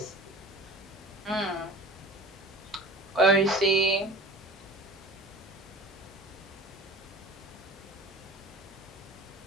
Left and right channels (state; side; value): normal; both; correlation 0.40